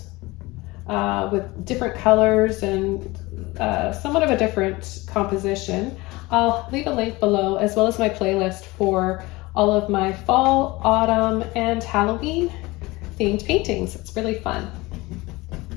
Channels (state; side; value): quieter; right; 21.8 dB